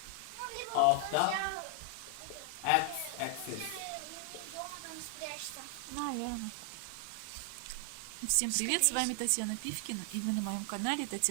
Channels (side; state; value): both; different; correlation 0.00